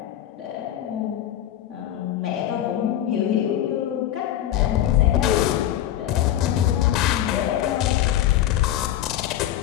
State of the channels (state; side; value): quieter; right; 12.1 dB